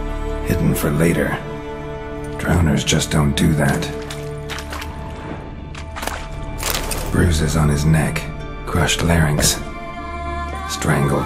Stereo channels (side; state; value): both; identical; correlation 1.00